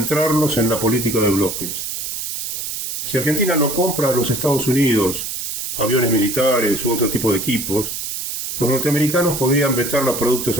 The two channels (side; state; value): right; noise; hiss, 4 dB below the sound